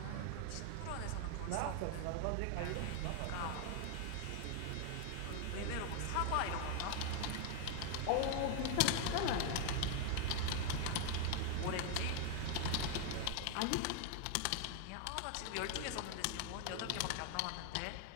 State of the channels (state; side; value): different; both; correlation 0.00